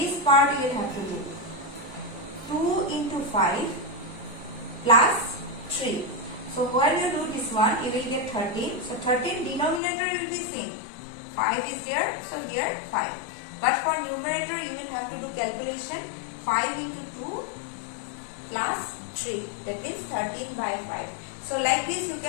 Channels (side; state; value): right; drops out; at 9.8 s